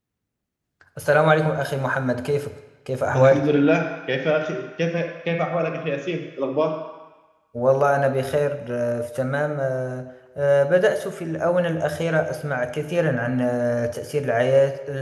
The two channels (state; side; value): identical; both; correlation 1.00